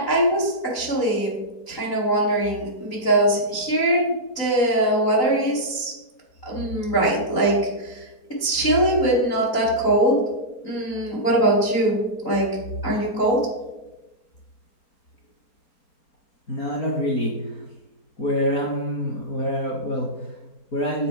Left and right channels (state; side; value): late; right; 4.4 ms